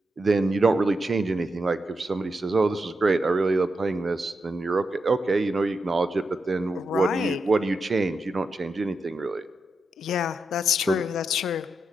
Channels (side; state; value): both; normal; correlation 0.86